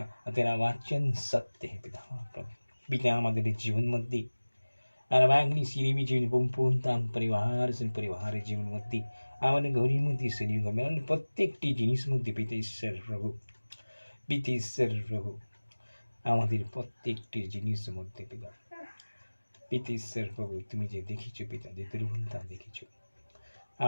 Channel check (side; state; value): both; inverted; correlation -1.00